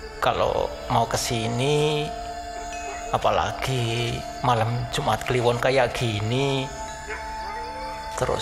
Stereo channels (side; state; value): both; identical; correlation 1.00